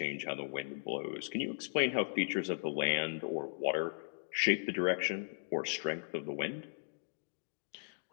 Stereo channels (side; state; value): right; silent; digital silence